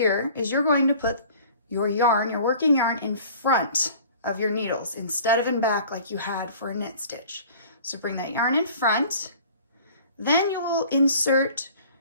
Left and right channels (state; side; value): inverted; both; correlation -0.47